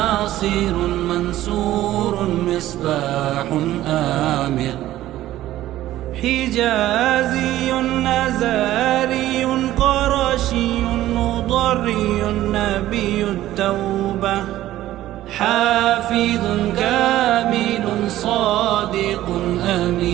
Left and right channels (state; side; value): quieter; left; 14.4 dB